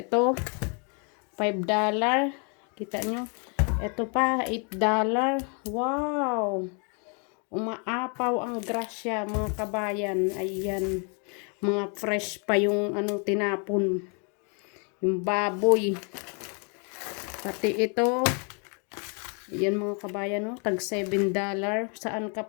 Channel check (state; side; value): quieter; right; 37.4 dB